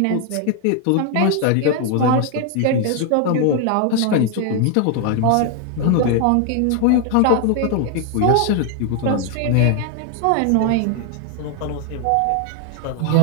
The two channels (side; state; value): both; different; correlation 0.00